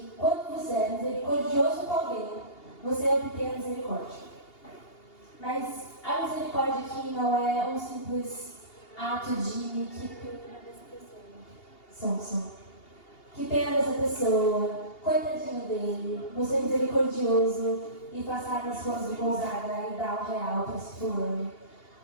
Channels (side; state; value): right; late; 2.8 ms